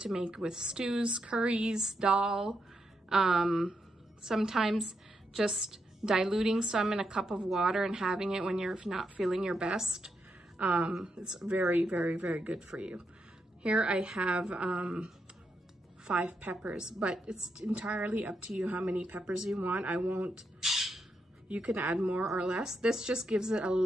to make with stews, curries, dal. Sometimes just diluting some in a cup of water and having it when you're not feeling your best. It's very, very, very good for you. Here I have 5 peppers, but it's entirely up to you how many peppers you want. You can add more or less. This just gives it a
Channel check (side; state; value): both; normal; correlation 0.82